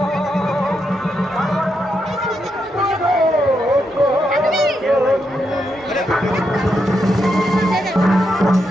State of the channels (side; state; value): both; normal; correlation 0.82